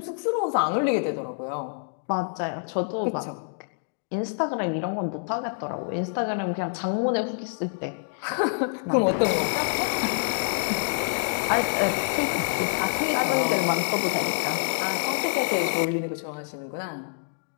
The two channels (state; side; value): silent; right; digital silence